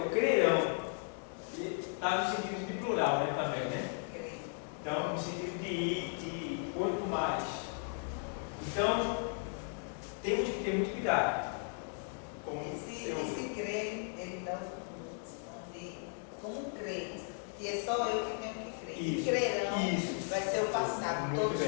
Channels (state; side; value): silent; right; 54 dB below the other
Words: crerão, está no sentido de plural, né, também, né? Então, no sentido de quanto mais. Então, temos que ter muito cuidado. Esse crer, ele dá como crer, que é só eu que tenho que crer. Isso, Crerão isso. vai ser o passado, Muito todos